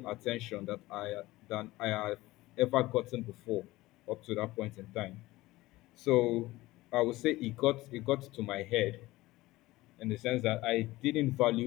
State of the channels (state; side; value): quieter; right; 18.5 dB